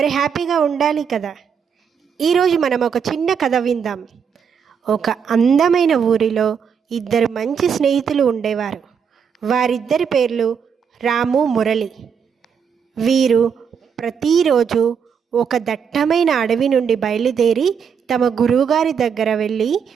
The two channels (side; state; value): left; quieter; 7.0 dB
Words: హ్యాపీగా ఉండాలి కదా. ఈరోజు మనం ఒక చిన్న కథ విందాం. ఒక అందమైన ఊరిలో ఇద్దరు మంచి స్నేహితులు ఉండేవారు. వారిద్దరి పేర్లు రాము, మురళి. వీరు ప్రతిరోజు ఒక దట్టమైన అడవి నుండి బయలుదేరి తమ గురువుగారి దగ్గర వెళ్ళి